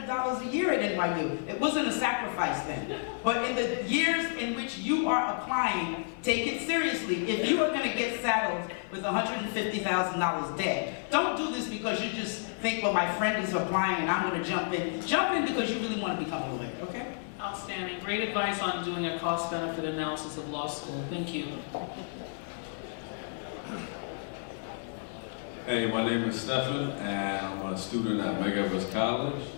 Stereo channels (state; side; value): silent; right; 57 dB below the other